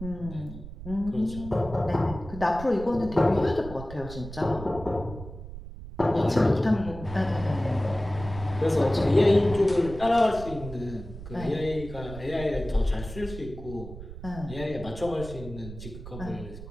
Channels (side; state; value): right; noise; rumble, 12 dB below the sound